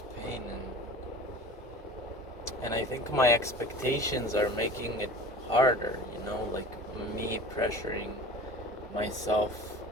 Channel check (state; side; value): normal; both; correlation 0.39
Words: pain, and I think my expectations are making it harder, like me pressuring myself